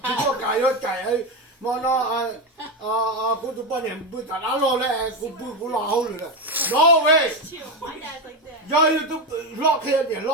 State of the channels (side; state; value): both; normal; correlation 0.13